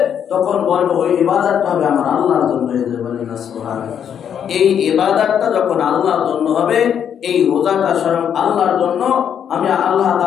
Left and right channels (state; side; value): quieter; right; 8.5 dB